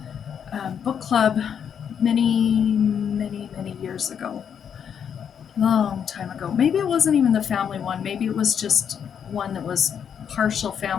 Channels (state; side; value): quieter; right; 7.9 dB